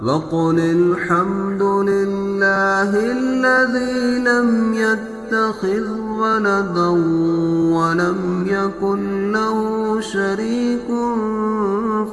وقل الحمد لله الذي لم يتخذ ولدا ولم يكن له شريك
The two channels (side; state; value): both; identical; correlation 1.00